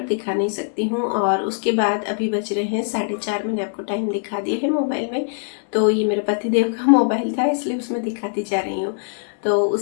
दिखा नहीं सकती हूँ। और उसके बाद अभी बज रहे हैं 4:30, मैंने आपको टाइम दिखा दिया है मोबाइल में। तो ये मेरे पति देव का मोबाइल था इसलिए उसमें दिखाती जा रही हूँ। तो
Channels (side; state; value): right; silent; 64 dB below the other